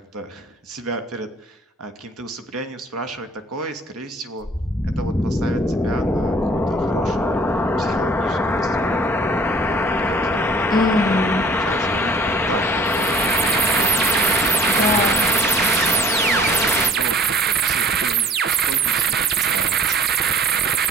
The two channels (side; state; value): both; normal; correlation 0.51